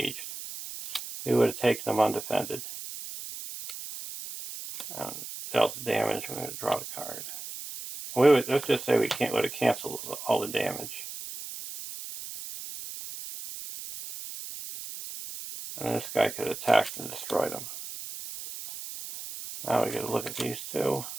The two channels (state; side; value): noise; right; hiss, 10 dB below the sound